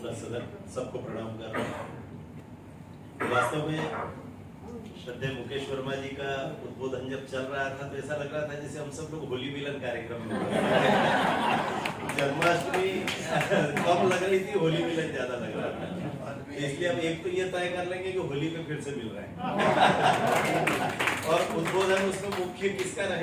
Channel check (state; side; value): identical; both; correlation 1.00